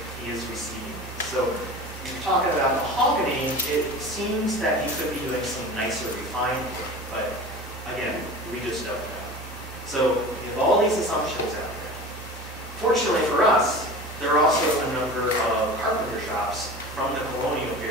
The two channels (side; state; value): both; normal; correlation 0.35